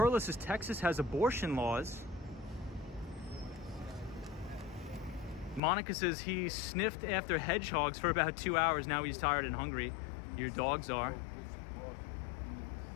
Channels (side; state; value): right; drops out; at 5.6 s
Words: says, Texas has abortion laws. Monica says he sniffed after hedgehogs for about 2 hours. Now he's tired and hungry. Your dogs are.